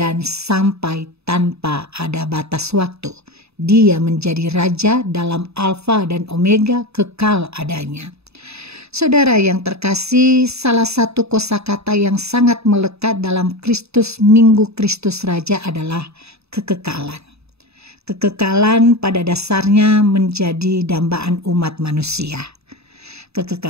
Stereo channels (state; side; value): late; left; 0.79 ms